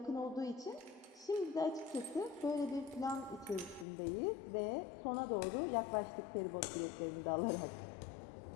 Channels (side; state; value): right; drops out; at 3.9 s